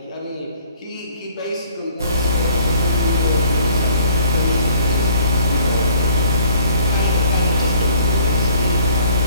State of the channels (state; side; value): inverted; both; correlation -0.57